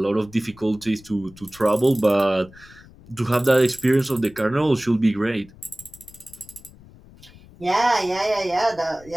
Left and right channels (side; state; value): left; noise; rumble, 23 dB below the sound